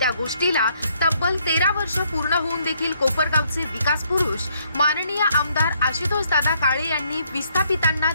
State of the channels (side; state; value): both; inverted; correlation -0.70